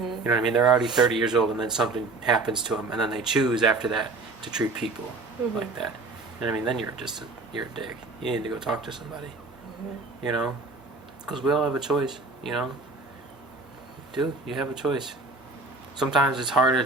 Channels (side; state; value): left; quieter; 3.4 dB